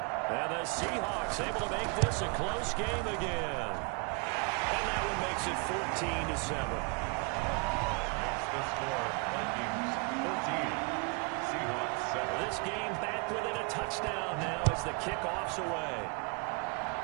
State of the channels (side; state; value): left; quieter; 34.4 dB